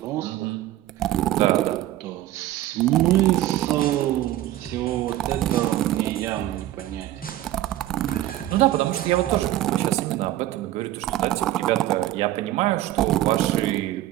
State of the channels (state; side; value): quieter; left; 14.6 dB